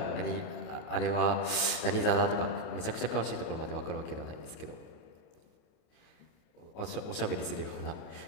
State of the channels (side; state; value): right; late; 28 ms